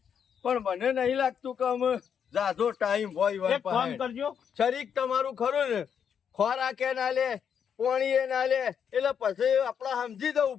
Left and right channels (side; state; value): right; quieter; 7.7 dB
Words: પણ મને નહીં લાગતું કે અમે જાજો ટાઈમ હોય એક ફોન કરજો. શરીક તમારું ખરું ને, ખોરાકે ના લે પાણીએ ના લે એટલે પછી આપડે સમજી જવું